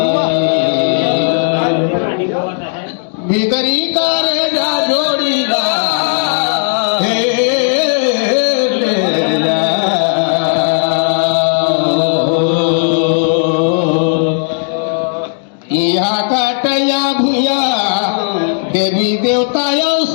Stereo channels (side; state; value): right; silent; 62 dB below the other